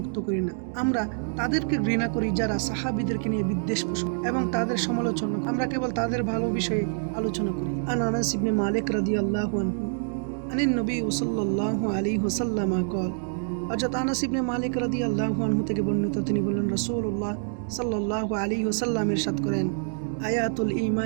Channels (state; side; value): silent; left; 60 dB below the other